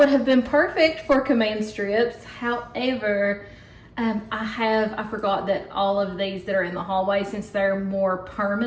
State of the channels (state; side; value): identical; both; correlation 1.00